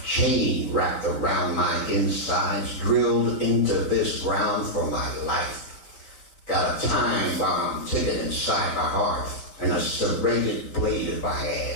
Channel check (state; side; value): late; right; 3.9 ms